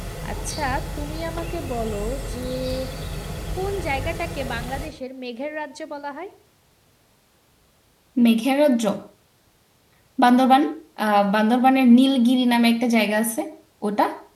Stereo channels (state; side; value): identical; both; correlation 1.00